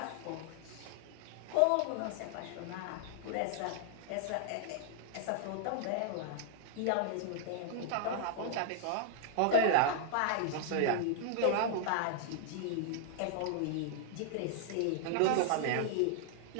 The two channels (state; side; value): different; both; correlation -0.01